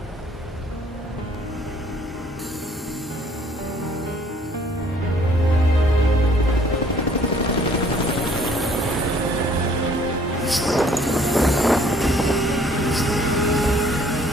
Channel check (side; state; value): both; normal; correlation 0.59